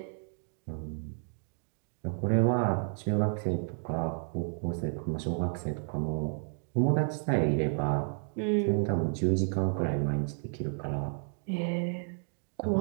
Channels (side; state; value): left; silent; 57 dB below the other